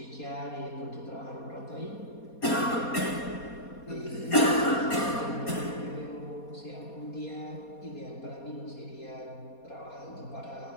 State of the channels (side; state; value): right; late; 4.2 ms